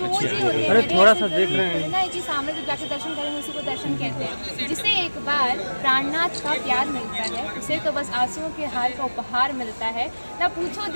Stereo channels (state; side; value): inverted; both; correlation -1.00